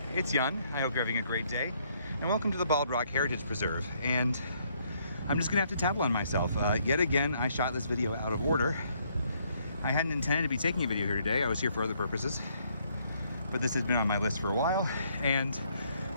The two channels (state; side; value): inverted; both; correlation -0.69